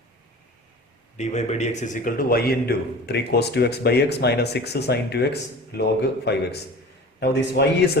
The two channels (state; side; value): normal; both; correlation 0.39